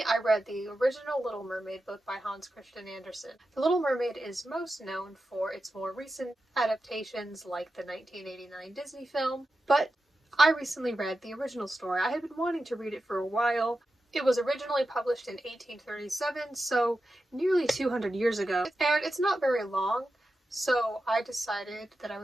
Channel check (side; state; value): both; normal; correlation 0.91